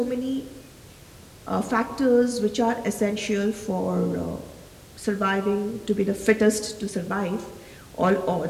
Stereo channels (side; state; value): both; identical; correlation 1.00